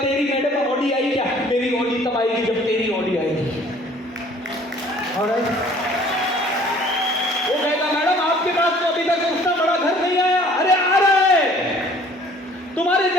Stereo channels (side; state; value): both; normal; correlation 0.54